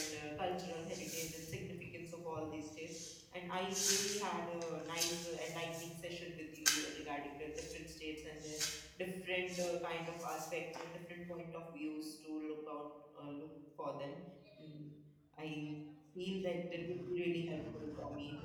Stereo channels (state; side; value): identical; both; correlation 1.00